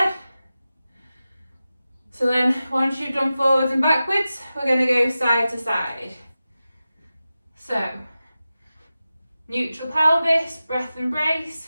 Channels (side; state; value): both; inverted; correlation -0.94